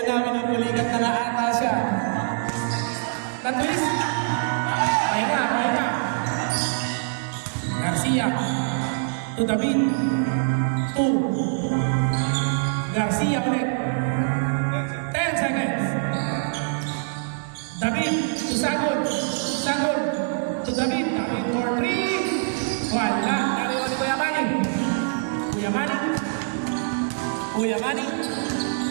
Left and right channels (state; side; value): silent; left; digital silence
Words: namin ang pulikat na naata siya. Na-twist. Pahinga. Garcia. To David. 2. Garcia ulit. 10 seconds. David to Sagol. Sagol to David. David for 3. Wala. Nariwan ni Kuya Manny. Kuya Manny. Kuya Manny.